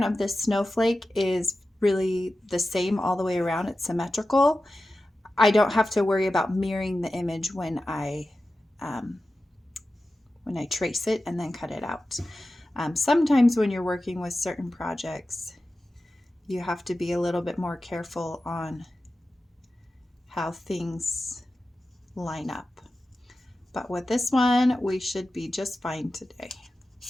of this snowflake is really the same all the way around, it's symmetrical, I don't have to worry about mirroring the image when I trace it and then cut it out. Sometimes when you're working with certain projects, you have to be a little bit more careful on how things line up. But with this one, we should be just fine today.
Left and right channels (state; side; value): normal; both; correlation 0.94